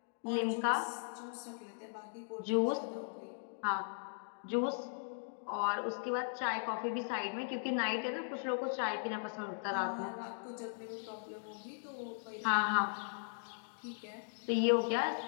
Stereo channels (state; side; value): silent; right; digital silence